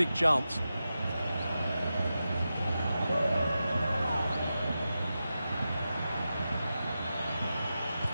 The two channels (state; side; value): inverted; both; correlation -0.91